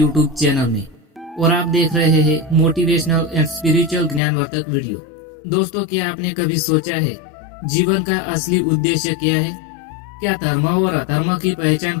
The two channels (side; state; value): right; drops out; at 4.2 s